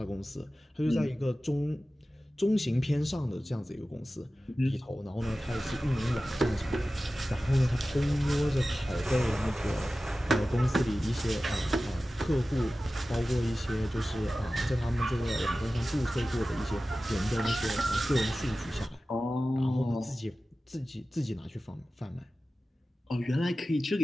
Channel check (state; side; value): normal; both; correlation 0.95